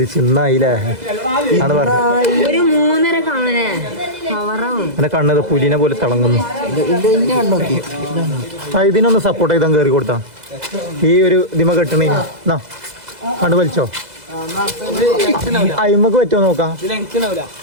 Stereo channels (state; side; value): late; left; 2.0 ms